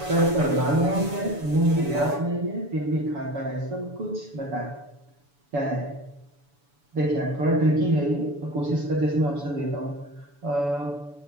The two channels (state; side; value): late; left; 7.0 ms